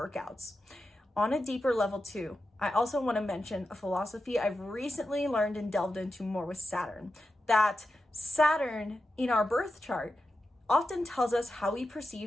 On a deeper level too, I also want to mention a philosophy I've recently learned and delved into more with Saturn, that Saturn in our birth chart often tells us how we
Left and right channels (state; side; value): normal; both; correlation 0.90